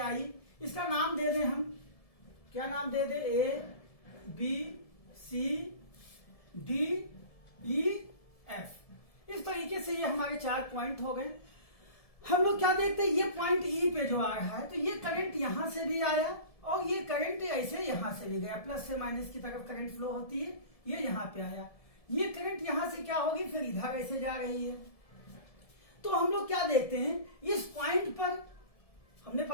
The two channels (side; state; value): right; late; 1.7 ms